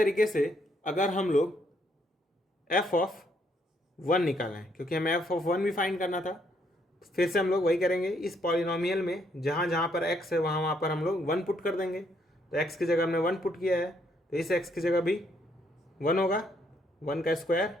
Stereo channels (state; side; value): normal; both; correlation 0.71